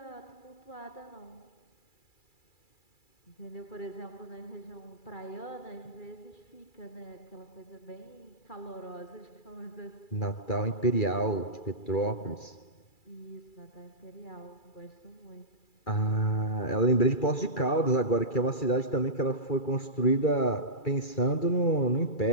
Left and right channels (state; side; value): late; right; 2.3 ms